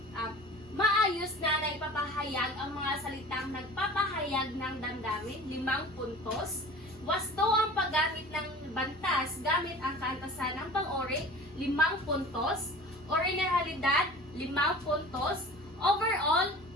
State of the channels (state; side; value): normal; both; correlation 0.41